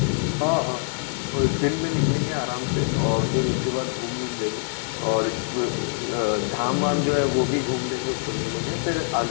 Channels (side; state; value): right; silent; 62 dB below the other